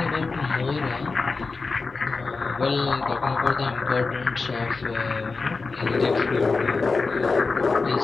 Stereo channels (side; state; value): right; quieter; 4.1 dB